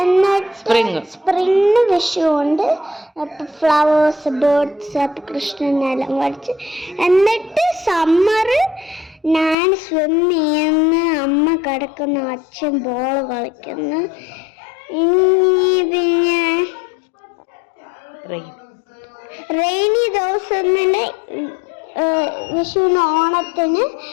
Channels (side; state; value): right; drops out; at 9.6 s